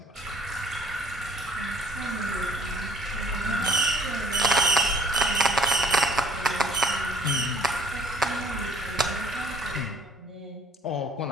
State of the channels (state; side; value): normal; both; correlation 0.55